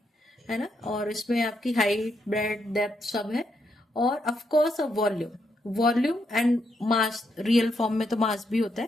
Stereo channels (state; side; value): normal; both; correlation 0.79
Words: है ना। और इसमें आपकी हाइट, ब्रेड्थ, डेप्थ सब है। और of course volume, volume and mass. Real form में तो मास भी होता है,